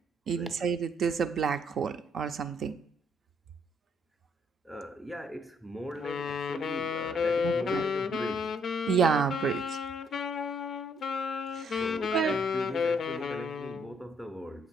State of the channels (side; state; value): both; normal; correlation 0.68